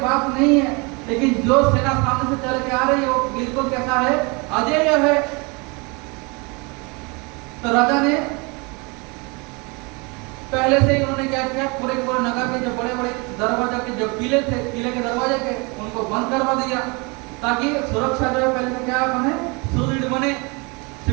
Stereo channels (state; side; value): quieter; left; 29.3 dB